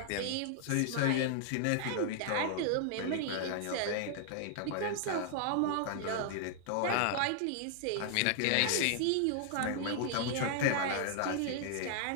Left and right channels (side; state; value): both; different; correlation 0.00